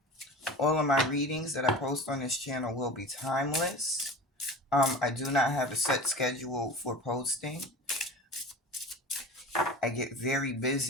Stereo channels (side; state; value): both; normal; correlation 0.34